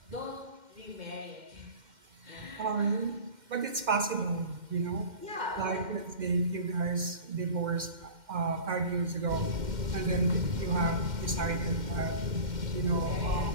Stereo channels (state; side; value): late; left; 2.1 ms